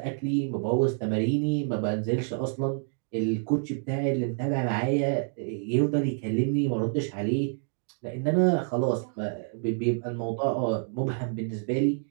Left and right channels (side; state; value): left; silent; 59 dB below the other